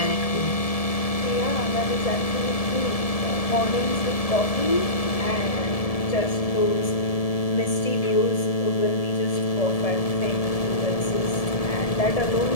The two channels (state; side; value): late; right; 1.7 ms